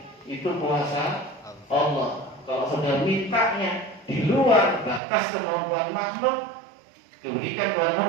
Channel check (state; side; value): drops out; left; at 5.0 s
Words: Itu kuasa Allah. Kalau sudah mintanya di luar batas kemampuan makhluk, diberikan kepada